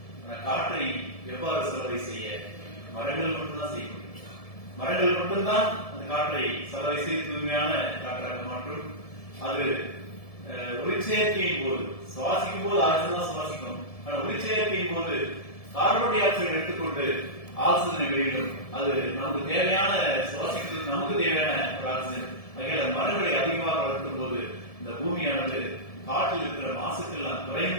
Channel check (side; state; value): right; late; 1.7 ms